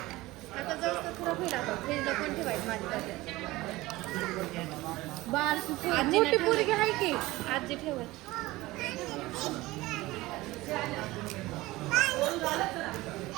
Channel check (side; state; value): left; quieter; 19.2 dB